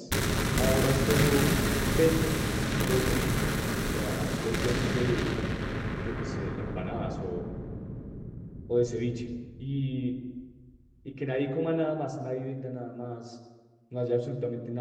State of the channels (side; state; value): both; identical; correlation 1.00